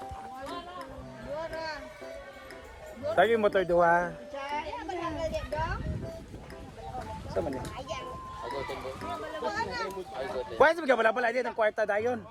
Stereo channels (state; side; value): identical; both; correlation 1.00